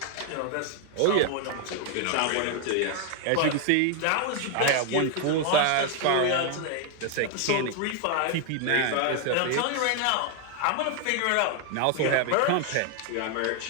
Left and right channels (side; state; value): both; different; correlation 0.01